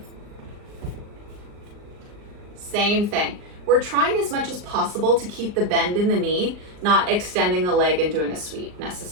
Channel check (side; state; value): left; late; 39 ms